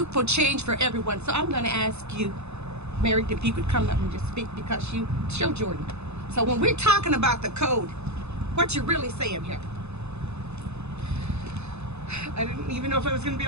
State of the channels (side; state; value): left; late; 0.81 ms